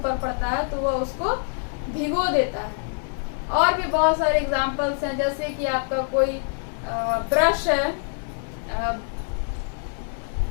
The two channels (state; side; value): silent; right; 62 dB below the other